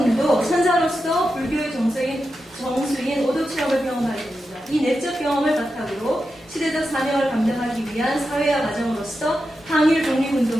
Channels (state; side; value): normal; both; correlation 0.89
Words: 선사로서 불교의 정수인 오도 체험을 경험하게 됩니다. 이 내적 경험을 바탕으로 시대적 사명을 감당하기 위한 사회화 과정으로서 항일